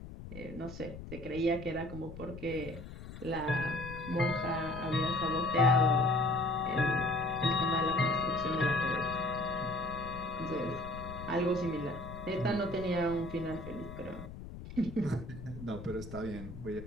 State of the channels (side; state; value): left; noise; rumble, 12 dB below the sound